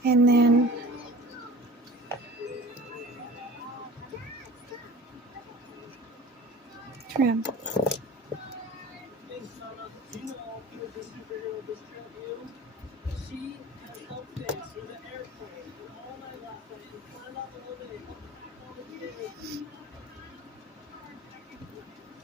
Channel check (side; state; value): both; normal; correlation 0.41